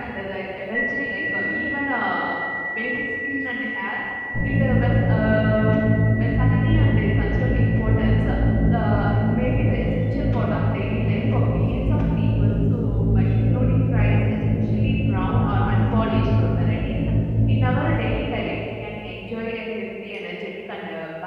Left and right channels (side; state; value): both; identical; correlation 1.00